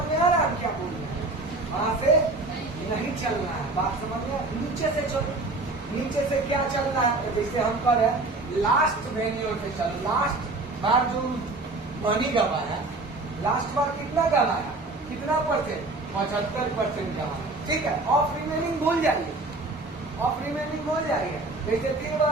में आ रहा है क्या बोल रहे हैं? वहां से नहीं चलना है। बात समझ में, नीचे से चलो। नीचे से क्या चलना है, तो जैसे हम कर रहे हैं लास्ट वेन्यू से चलो। लास्ट बार जो मनी गवाया, लास्ट बार कितना गवाया, कितना परसेंट, 75% गवाया। ठीक है, ऑफ रिमेनिंग भूल जाइए, ऑफ रिमेनिंग भूल जाइए। जैसे 3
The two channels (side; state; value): left; quieter; 3.1 dB